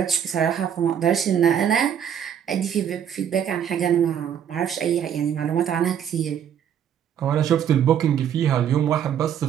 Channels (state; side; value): quieter; left; 9.0 dB